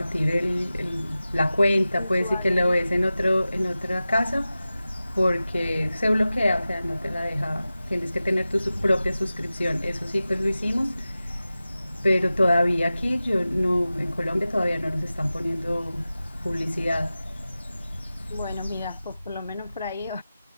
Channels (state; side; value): inverted; both; correlation -0.95